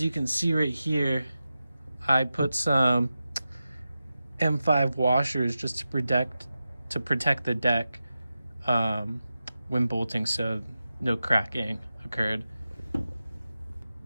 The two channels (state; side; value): inverted; both; correlation -0.92